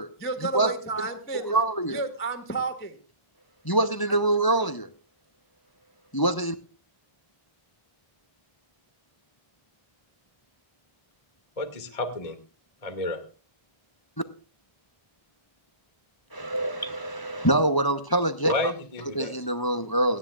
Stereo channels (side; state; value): right; late; 1.0 ms